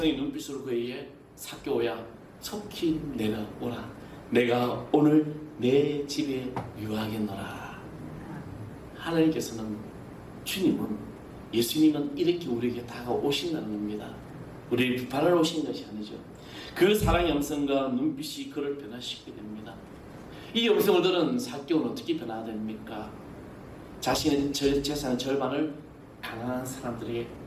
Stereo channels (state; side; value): identical; both; correlation 1.00